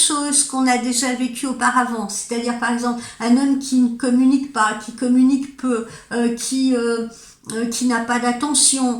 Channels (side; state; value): both; identical; correlation 1.00